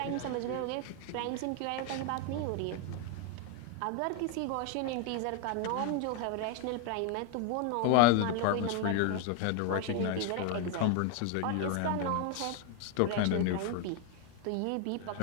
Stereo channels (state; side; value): different; both; correlation 0.01